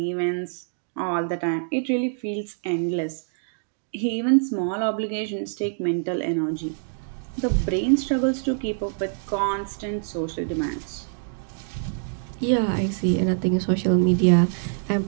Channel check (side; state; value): left; silent; digital silence